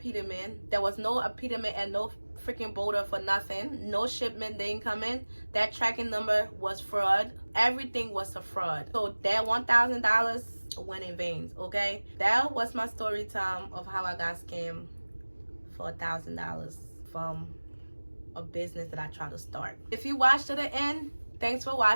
There was no apetamin and no freaking border for nothing. No shipment, they didn't come in. That tracking number was fraud. Everything was a fraud. So that $1,000 went in vain. Okay, that was my story time of how I got scammed for $1,000 from a business that I tried to start. If you watched to the end, thanks for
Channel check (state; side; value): inverted; both; correlation -1.00